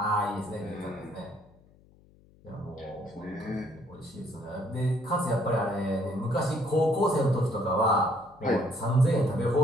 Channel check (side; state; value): left; noise; hum, 28 dB below the sound